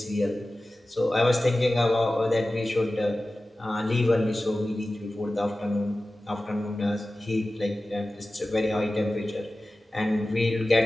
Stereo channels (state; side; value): normal; both; correlation 0.95